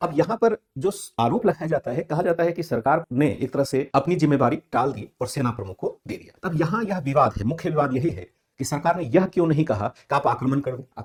अब यहाँ पर जो आरोप लगाया जाता है, कहा जाता है कि सरकार ने एक तरह से अपनी जिम्मेदारी टाल दी और सेना प्रमुख को दे दिया। अब यहाँ यह विवाद है, मुख्य विवाद यही है कि सरकार ने यह क्यों नहीं कहा कि आप आक्रमण कर दो।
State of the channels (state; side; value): identical; both; correlation 1.00